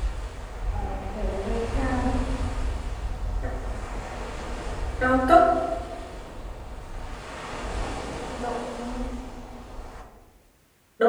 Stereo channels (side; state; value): both; identical; correlation 1.00